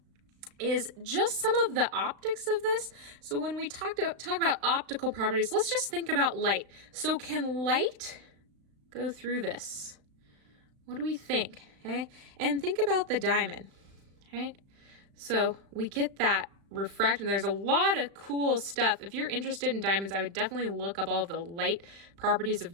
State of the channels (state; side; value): late; left; 35 ms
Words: is just some of the optics of this. So when we talk about optical properties, let's just think about light. So can light go through this? What do we think? Okay, and think about the diamond, right? So we get that refraction. There's a lot of cool stuff. If you're interested in diamonds, I would definitely look up all of the light properties